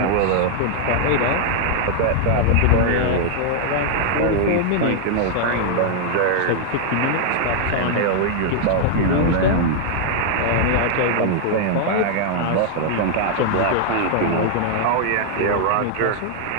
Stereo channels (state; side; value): different; both; correlation 0.00